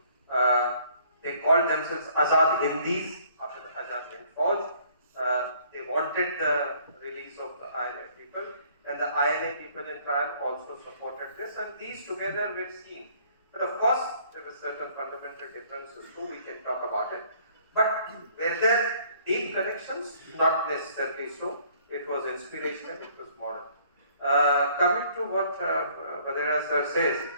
They called themselves Azad Hindis after the Azad Hind Fauj. They wanted the release of the INA people, and the INA people in trial also supported this, and these together were seen. But of course, there were certain fundamental differences too, we can talk about it. But were there deep connections? Not necessarily so. It was inspirational, it was moral. Coming to what Vadera sir says,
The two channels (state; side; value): inverted; both; correlation -0.60